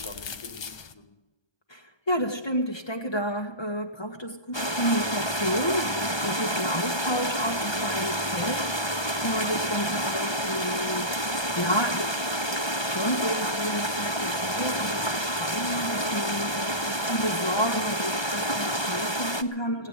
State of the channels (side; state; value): right; late; 1.2 ms